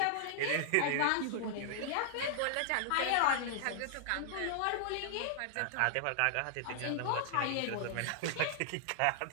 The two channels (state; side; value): different; both; correlation -0.01